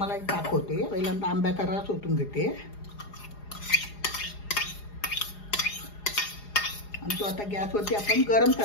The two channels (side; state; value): right; late; 4.8 ms